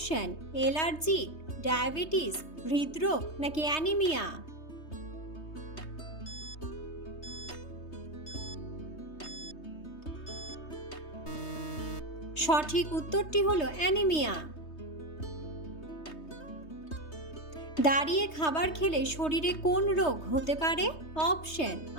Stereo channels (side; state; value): right; late; 3.2 ms